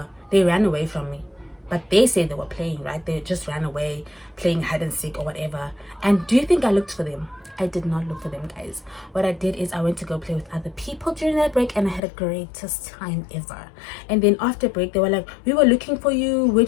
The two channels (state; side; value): drops out; right; at 12.0 s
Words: ran away from me. But they said they were playing, right? They just ran away, playing hide and seek or whatever. And do you think I looked for them? I did not look for them, guys. What I did is I went to go play with other people during that break, and I had a greatest time ever. And then after break, they were like, we were looking for you. Where